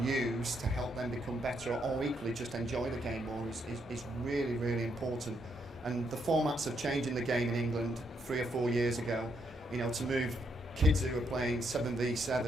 use to help them become better, or equally just enjoy the game more, is really, really important. And the formats of changing the game in England 3 or 4 years ago, you know, to move kids who are playing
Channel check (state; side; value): normal; both; correlation 0.76